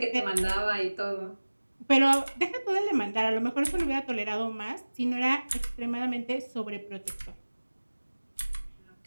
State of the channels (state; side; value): inverted; both; correlation -1.00